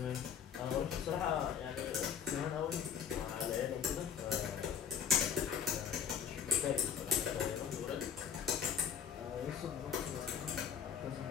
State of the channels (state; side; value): quieter; right; 7.9 dB